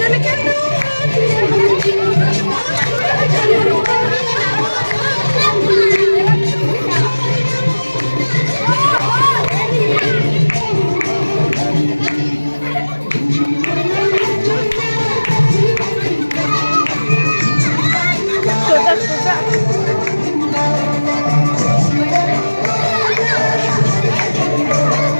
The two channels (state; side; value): inverted; both; correlation -1.00